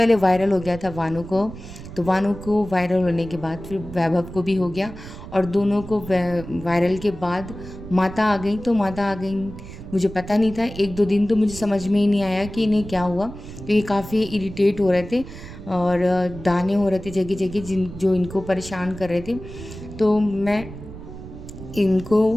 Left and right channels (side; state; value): right; noise; rumble, 13 dB below the sound